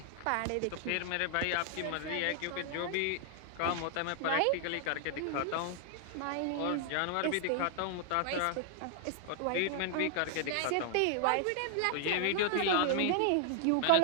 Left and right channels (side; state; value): both; different; correlation 0.00